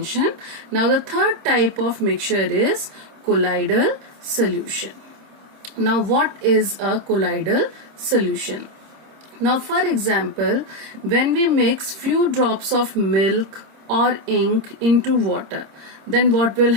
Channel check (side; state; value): left; late; 26 ms